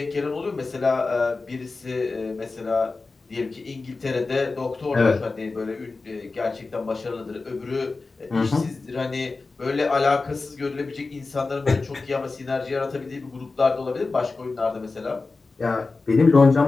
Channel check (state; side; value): quieter; right; 3.8 dB